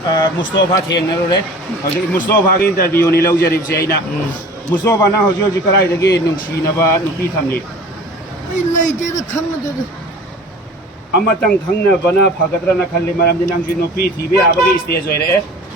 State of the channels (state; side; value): normal; both; correlation 0.42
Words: Mustafa Thiengnarore hꯧji Mustafa gi interview ni lawjaribse aina Mustafa na hꯧji karaidagi nungsinaba nupi thamni ai leite da khangna amatang khangna bana phagadrana khalli maramdi nangji nupi thibe abagi stage oire